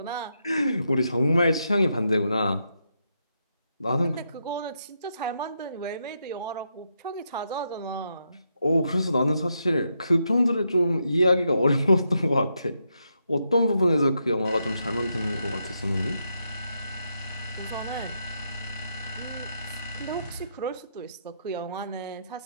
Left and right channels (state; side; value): inverted; both; correlation -0.81